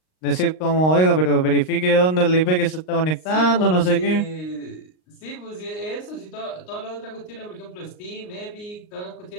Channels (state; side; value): late; right; 38 ms